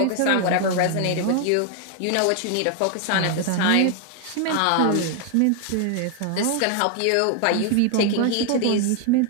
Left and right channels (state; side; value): different; both; correlation 0.00